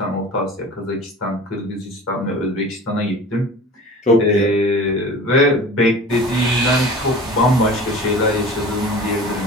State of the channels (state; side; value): normal; both; correlation 0.39